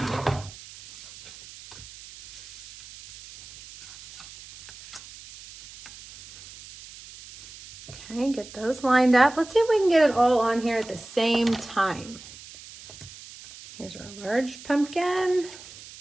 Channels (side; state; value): right; noise; hiss, 17 dB below the sound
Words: Okay, get those lined up. Let's see if we can get it all on here at the same time. Here's our large pumpkin